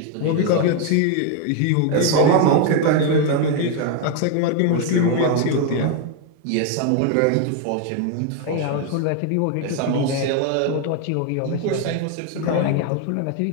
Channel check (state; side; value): different; both; correlation 0.01